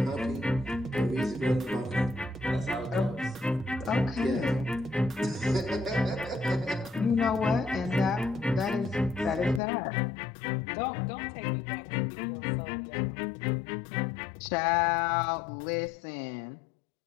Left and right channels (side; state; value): right; drops out; at 9.6 s